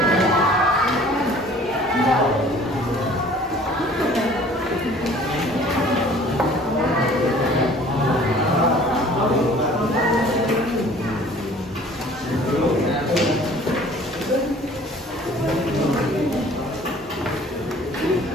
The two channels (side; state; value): both; normal; correlation 0.51